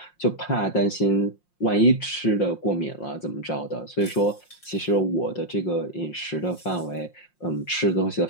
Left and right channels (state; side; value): late; right; 5.6 ms